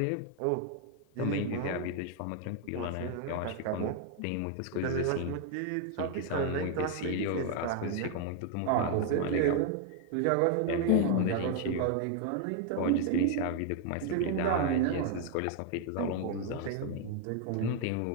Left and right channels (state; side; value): different; both; correlation 0.00